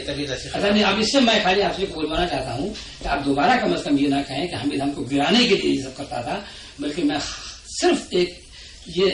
नहीं, अब इससे मैं खाली आपसे बोलवाना चाहता हूँ कि आप दोबारा कम से कम ये ना कहें कि हामिद हमको गिराने के लिए ये सब करता था, बल्कि मैं सिर्फ एक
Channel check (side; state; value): both; identical; correlation 1.00